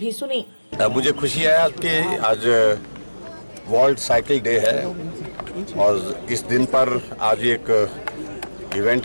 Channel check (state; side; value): inverted; both; correlation -1.00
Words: सुनी। मुझे खुशी है कि आज वर्ल्ड साइकिल डे है और इस दिन पर आज एक